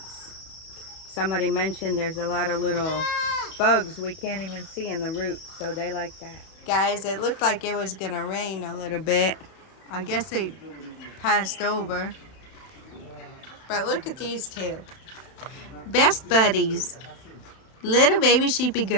Somebody mentioned there's a lot of little bugs we can't even see in the roots, so they like that. Guys, it looked like it was gonna rain a little bit. I guess it passed over. But look at these two. Best buddies. Little baby sheepy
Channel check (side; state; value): right; late; 31 ms